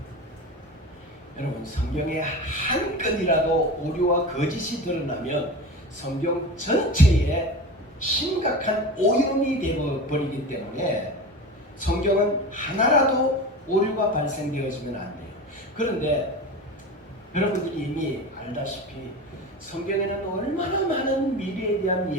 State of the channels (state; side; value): normal; both; correlation 0.29